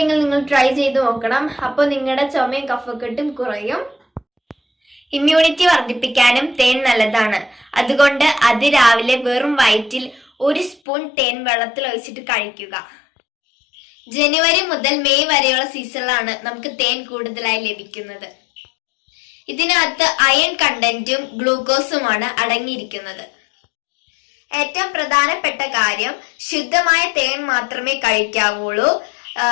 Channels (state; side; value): drops out; right; at 10.8 s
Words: നിങ്ങൾ ട്രൈ ചെയ്ത് നോക്കണം. അപ്പോൾ നിങ്ങളുടെ ചുമയും കഫക്കെട്ടും കുറയും. ഇമ്മ്യൂണിറ്റി വർദ്ധിപ്പിക്കാനും തേൻ നല്ലതാണ്. അതുകൊണ്ട് രാവിലെ വെറും വയറ്റിൽ 1 സ്പൂൺ തേൻ വെള്ളത്തിൽ ഒഴിച്ചിട്ട് കഴിക്കുക. ജനുവരി മുതൽ മെയ് വരെയുള്ള സീസണിലാണ് നമുക്ക് തേൻ കൂടുതലായി ലഭിക്കുന്നത്. ഇതിനകത്ത് അയൺ കണ്ടന്റും ഗ്ലൂക്കോസുമാണ് അടങ്ങിയിരിക്കുന്നത്. ഏറ്റവും പ്രധാനപ്പെട്ട കാര്യം, ശുദ്ധമായ തേൻ മാത്രമേ കഴിക്കാവുള്ളൂ.